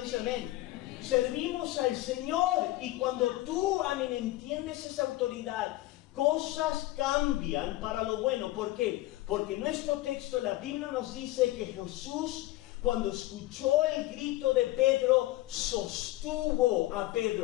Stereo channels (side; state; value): right; quieter; 17.6 dB